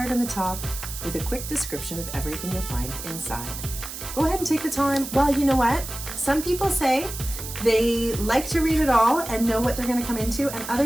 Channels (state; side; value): noise; right; hiss, 9 dB below the sound